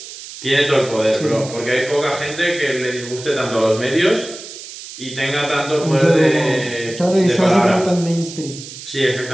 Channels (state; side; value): noise; right; hiss, 13 dB below the sound